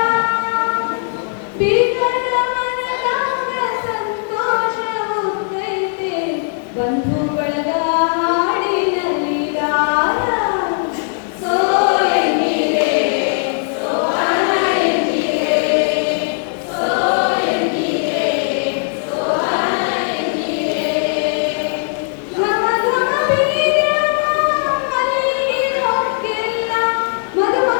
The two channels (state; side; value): silent; right; 58 dB below the other